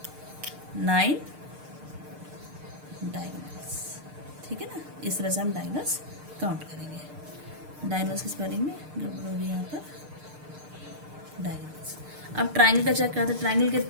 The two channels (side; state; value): left; late; 6.6 ms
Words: 9 diagonals. ठीक है ना, इस तरह से हम डायगोनल्स काउंट करेंगे। डायगोनल्स की स्पेलिंग में गड़बड़ होगी यहाँ पर, डायगोनल्स। अब ट्राइंगल का चेक करते हैं। ट्राइंगल के